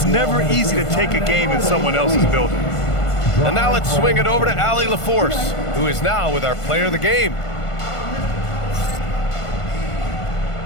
never easy to take a game in someone else's building. And now let's swing it over to Allie LaForce, who is now with our player of the game.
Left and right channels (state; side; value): late; right; 1.5 ms